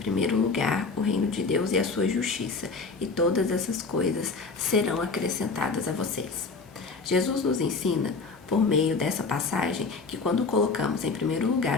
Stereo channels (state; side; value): quieter; right; 4.2 dB